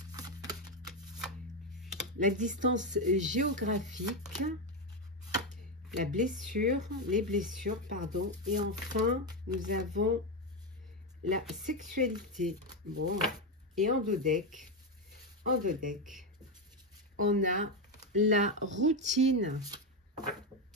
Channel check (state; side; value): normal; both; correlation 0.09